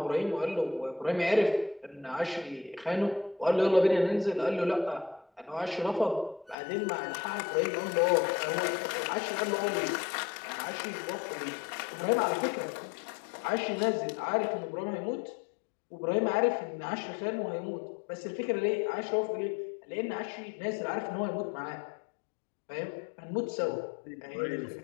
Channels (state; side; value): drops out; right; at 6.6 s